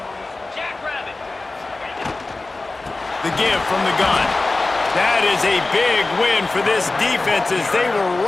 The give from the gun. That is a big win for this defense as they were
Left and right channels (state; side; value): quieter; right; 3.3 dB